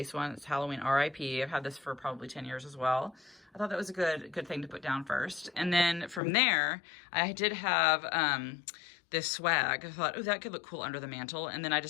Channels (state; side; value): drops out; right; at 6.2 s